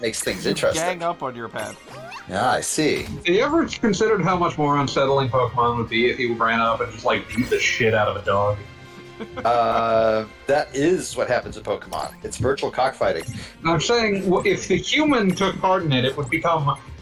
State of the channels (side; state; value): both; identical; correlation 1.00